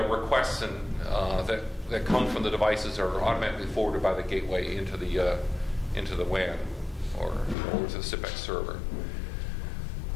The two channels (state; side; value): drops out; right; at 7.6 s